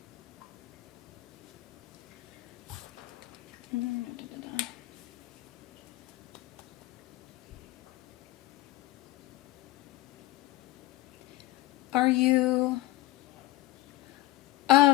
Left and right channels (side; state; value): right; quieter; 17.8 dB